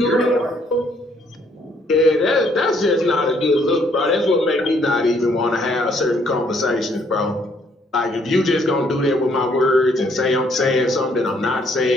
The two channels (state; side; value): normal; both; correlation 0.67